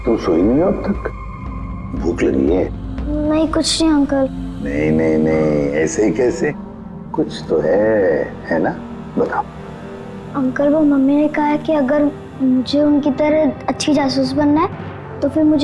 तुम सोई नहीं हो अब तक? भूख लगी है? नहीं कुछ नहीं अंकल। नहीं नहीं नहीं, ऐसे ही कैसे? कुछ तो है ना? बताओ। अंकल वो मम्मी ने कहा है कि अगर मुझे उनकी तरह अच्छी जासूस बनना है तो फिर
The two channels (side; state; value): both; identical; correlation 1.00